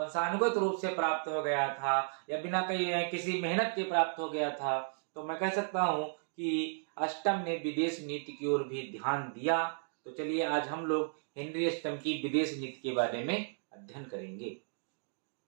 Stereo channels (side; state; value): left; silent; digital silence